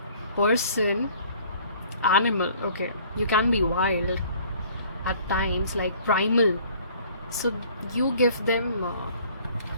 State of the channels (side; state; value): both; inverted; correlation -0.55